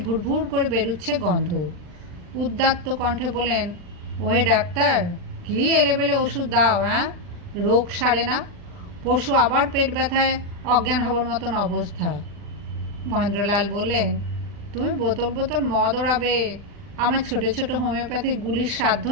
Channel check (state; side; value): late; left; 40 ms